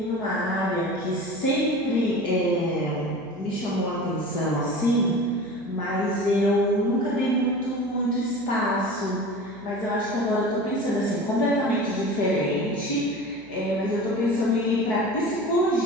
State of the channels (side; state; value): right; noise; hum, 24 dB below the sound